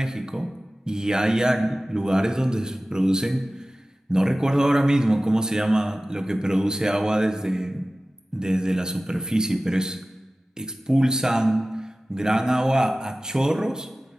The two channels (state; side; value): normal; both; correlation 0.96